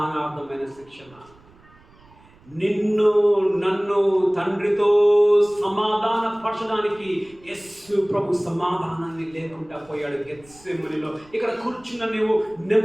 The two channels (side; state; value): right; noise; rumble, 27 dB below the sound